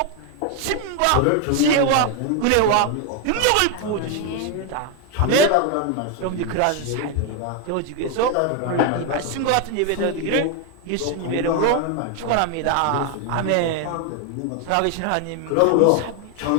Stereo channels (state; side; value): different; both; correlation 0.01